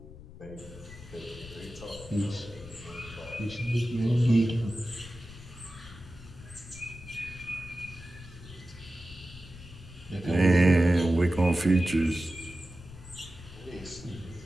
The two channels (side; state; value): left; noise; rumble, 16 dB below the sound